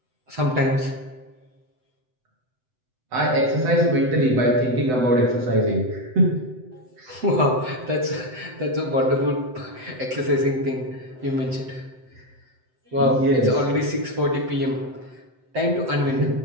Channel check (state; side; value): late; left; 7.9 ms